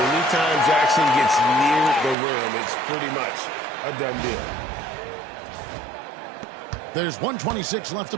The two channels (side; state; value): left; drops out; at 2.1 s